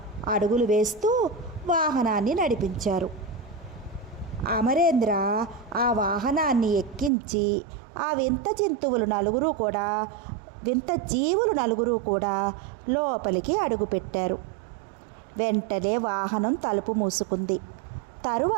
అడుగులు వేస్తూ వాహనాన్ని నడిపించారు. అమరేంద్ర ఆ వాహనాన్ని ఎక్కించి ఆ వింత జీవులు నలుగురు కూడా లోపలికి అడుగుపెట్టారు. వెంటనే వాహనం తలుపు మూసుకుంది.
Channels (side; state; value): left; drops out; at 7.1 s